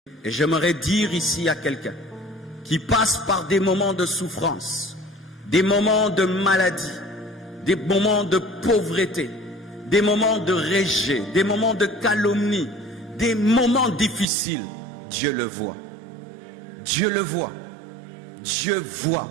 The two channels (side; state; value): left; drops out; at 14.2 s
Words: Et j'aimerais dire ici à quelqu'un qui passe par des moments de souffrance, des moments de maladie, des moments de pauvreté, des moments de rejet, des moments de calomnie, des moments difficiles, Dieu le voit. Dieu le voit. Dieu voit.